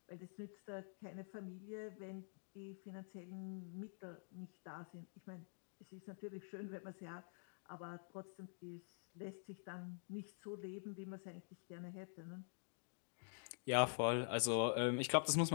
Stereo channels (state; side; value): silent; right; digital silence